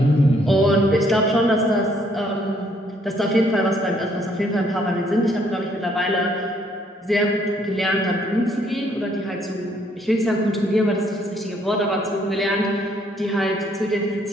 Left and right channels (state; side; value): normal; both; correlation 0.67